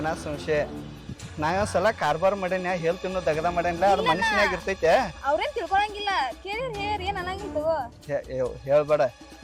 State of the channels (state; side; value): identical; both; correlation 1.00